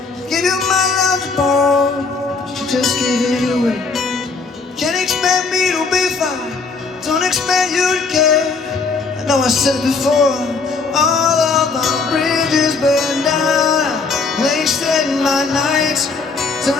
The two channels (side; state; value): right; quieter; 4.5 dB